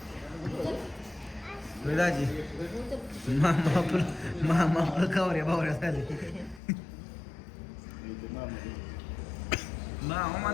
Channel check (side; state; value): right; drops out; at 6.6 s